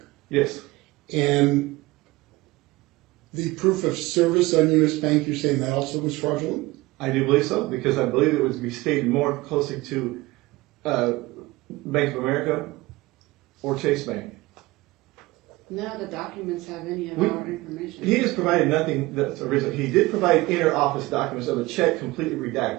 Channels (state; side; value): quieter; left; 20.6 dB